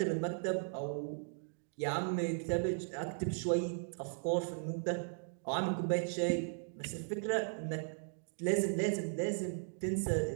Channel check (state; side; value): silent; left; digital silence